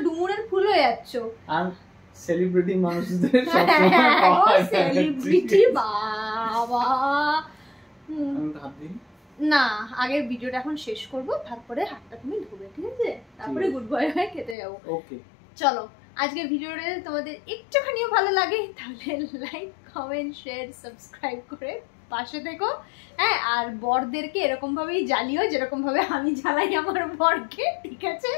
ডুমুরের ফুল হয়ে যাচ্ছ। আর সেলিব্রিটি মানুষদের সবসময় পাওয়া যায় সেলিব্রিটি বাবা। না, আগের ভিডিওটা এখন শেষ করব, তারপরে হাতটা তুমি ধুবে, ঠিক আছে? তারপরে গুড বয় হয়ে খেতে যাবো। ওকে চলো, আজকের ভিডিওটা তোমাদের একটুখানিও ভালো লাগে তাহলে লাইক, কমেন্ট, শেয়ার, সাবস্ক্রাইব করে পাশে থেকো। হ্যাঁ, আর বরদেরকে এরকম ভাবেই জ্বালিও যেরকম ভাবে আমি জ্বালাই আমার বরকে, ঠিক আছে?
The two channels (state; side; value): drops out; right; at 14.6 s